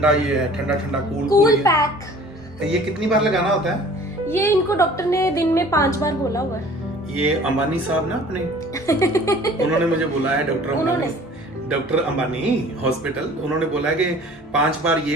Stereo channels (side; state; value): both; normal; correlation 0.48